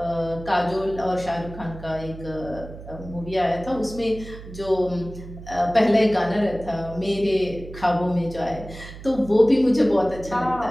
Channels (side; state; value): right; noise; hum, 14 dB below the sound